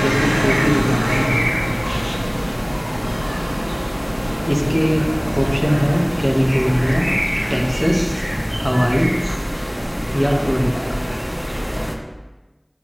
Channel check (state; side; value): identical; both; correlation 1.00